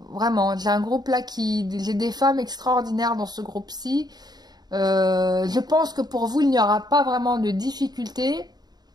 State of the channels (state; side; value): late; left; 0.20 ms